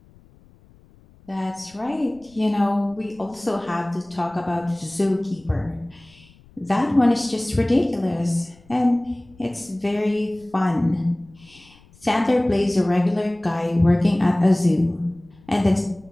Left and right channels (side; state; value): left; noise; rumble, 27 dB below the sound